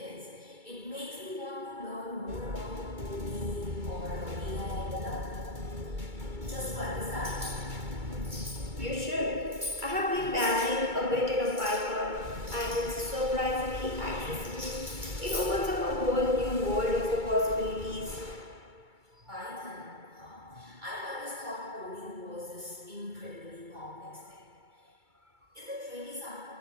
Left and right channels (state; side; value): late; left; 2.3 ms